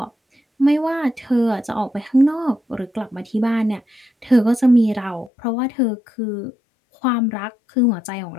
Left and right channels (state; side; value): drops out; right; at 5.3 s